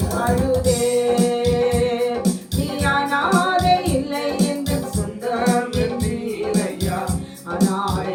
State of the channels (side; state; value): both; identical; correlation 1.00